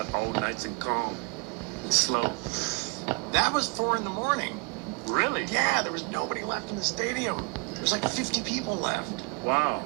all nice and calm and slow. That was 4 in the morning. Really? Yeah, there was nobody left in the stadium. There was like 50 people left. Wow.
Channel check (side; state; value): left; quieter; 32.2 dB